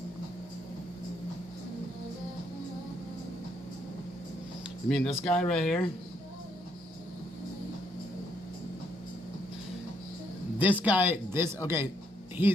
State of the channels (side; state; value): both; normal; correlation 0.72